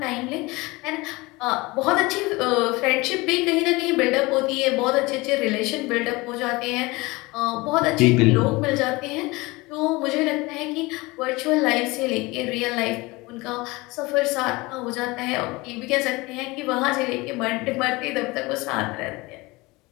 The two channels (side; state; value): right; quieter; 22.9 dB